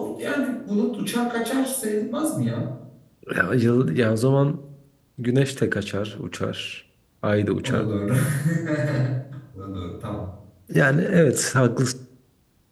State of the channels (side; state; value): both; identical; correlation 1.00